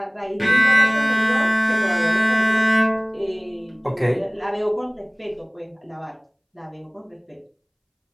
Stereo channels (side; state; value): both; identical; correlation 1.00